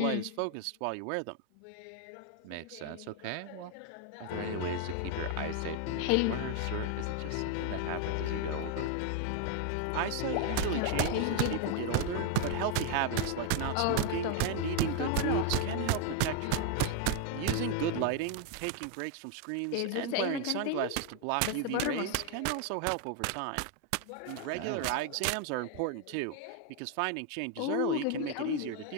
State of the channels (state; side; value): different; both; correlation 0.01